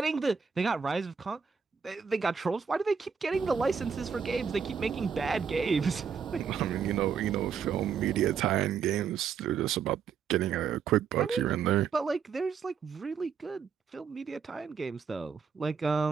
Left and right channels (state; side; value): quieter; left; 6.6 dB